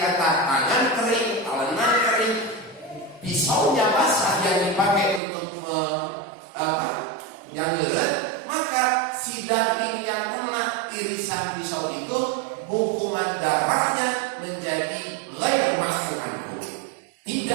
tangan kering, talenan kering, pisaunya basah yang dipakai untuk janggelan, maka si daging yang kena irisan pisau itu hukuman darahnya menjadi ghair ma'fu anhu,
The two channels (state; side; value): drops out; left; at 5.2 s